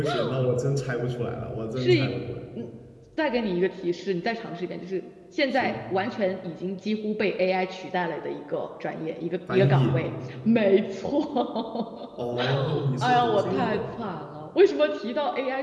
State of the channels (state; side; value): identical; both; correlation 1.00